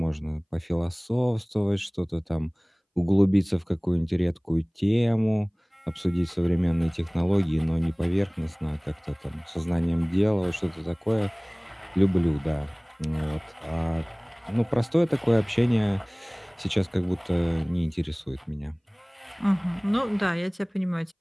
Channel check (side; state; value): both; identical; correlation 1.00